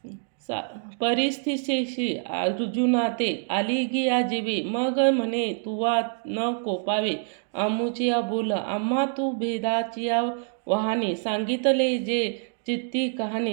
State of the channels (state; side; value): silent; left; 61 dB below the other